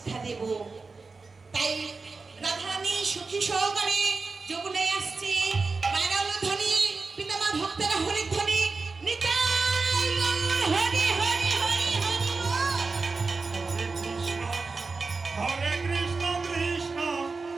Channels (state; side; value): quieter; left; 4.1 dB